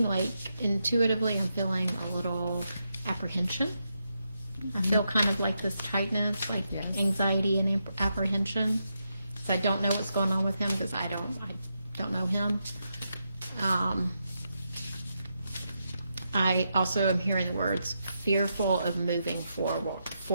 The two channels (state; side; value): inverted; both; correlation -0.84